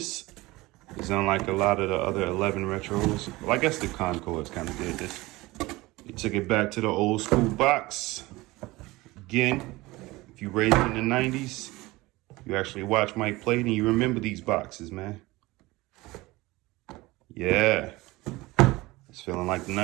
is unlike a lot of the other 11 retros. Well, I guess the Concords kind of did this. They took it back to the old school box. Again, if you raised in the 90s, you actually watch Mike play and you remember these boxes, man. Yeah, it's feeling like the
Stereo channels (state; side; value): quieter; left; 20.6 dB